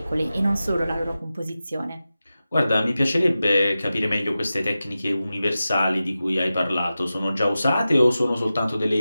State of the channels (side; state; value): both; inverted; correlation -0.94